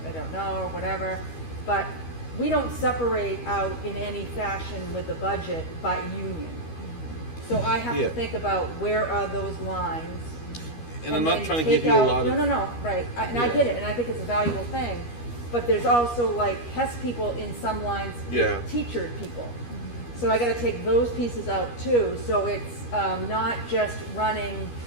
I don't know or whatever. But we don't separate out in any fashion with the budget by union. So I have to think about where are those lines. And I'm not then trying to take give you a out, lot of. No, right. I get it, and I think it's a valuable thing. But there's also like HES people in some lines with teacher people. So I got to take those pieces out too. So it's not just running.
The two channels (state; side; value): late; right; 13 ms